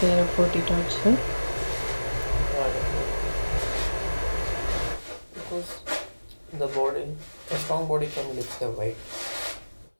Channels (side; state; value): both; inverted; correlation -1.00